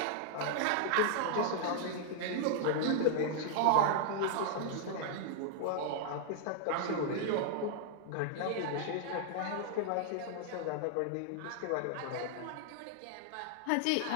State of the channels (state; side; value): different; both; correlation -0.01